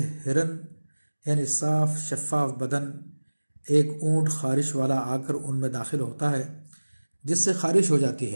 ہرن یعنی صاف شفاف بدن ایک اونٹ خارش والا آ کر ان میں داخل ہوتا ہے جس سے خارش ہو جاتی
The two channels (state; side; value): inverted; both; correlation -1.00